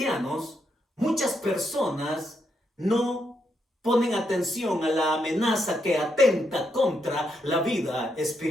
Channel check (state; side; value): normal; both; correlation 0.79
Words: muchas personas no ponen atención a la amenaza que atenta contra la vida